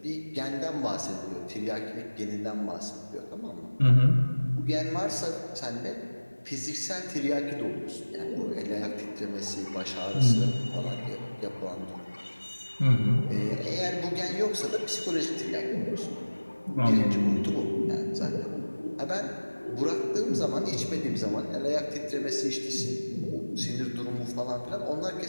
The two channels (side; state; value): both; inverted; correlation -1.00